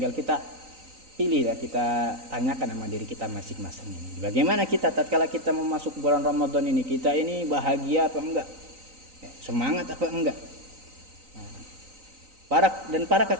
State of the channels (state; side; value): late; left; 3.9 ms